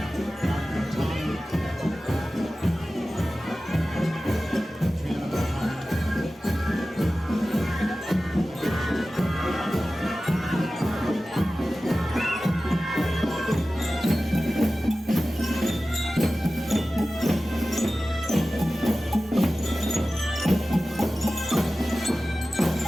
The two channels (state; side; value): normal; both; correlation 0.95